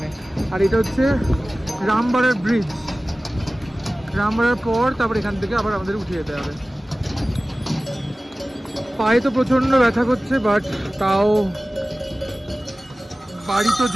আর এটা হচ্ছে রামবাড়ার ব্রিজ, রামবাড়ার পর তারপর এখান থেকে আবার আমাদের উঠে যেতে হবে। পায়ে তো প্রচন্ড ব্যথা করছে, বাট তাও বাড়ি তো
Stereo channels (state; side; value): normal; both; correlation 0.97